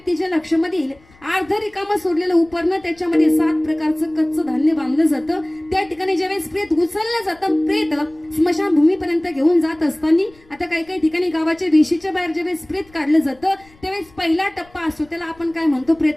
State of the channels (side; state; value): left; noise; rumble, 28 dB below the sound